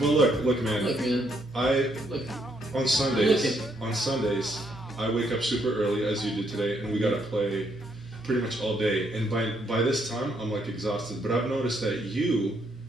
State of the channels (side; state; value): both; normal; correlation 0.73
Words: look, man. Look, man. On Sundays, I wake up super early as you did today, and we gotta play pretty much all day. And by this time, I'm like exhausted. But I've noticed that you